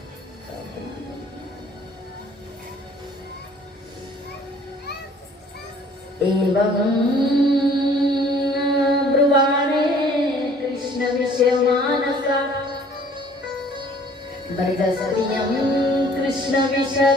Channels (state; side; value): normal; both; correlation 0.55